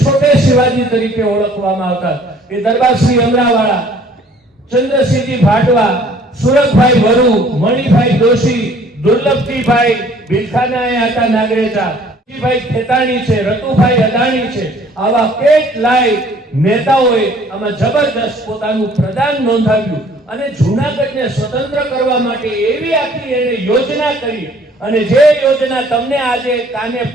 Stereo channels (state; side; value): normal; both; correlation 0.56